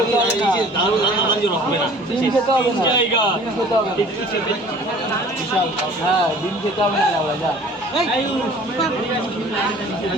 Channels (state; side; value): normal; both; correlation 0.49